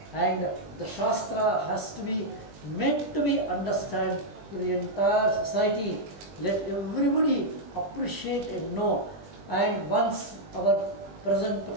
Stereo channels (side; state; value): left; late; 20 ms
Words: and the Shastra has to be meant to be understood to the entire society. Let everybody appreciate and know. And once our present